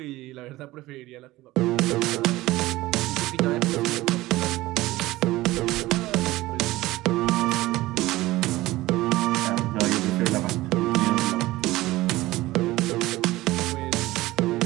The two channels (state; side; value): quieter; left; 18.0 dB